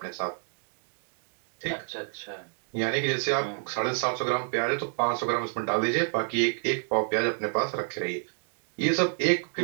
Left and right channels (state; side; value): silent; left; digital silence